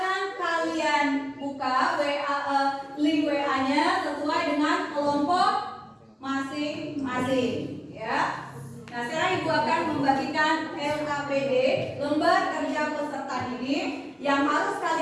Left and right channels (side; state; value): both; identical; correlation 1.00